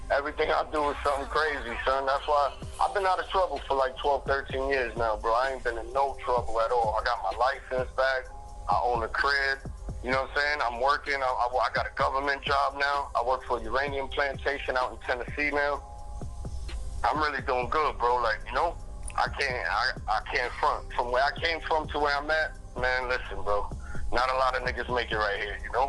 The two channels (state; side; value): identical; both; correlation 1.00